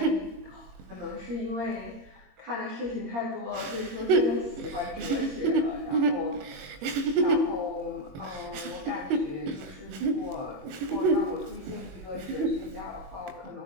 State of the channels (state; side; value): late; left; 21 ms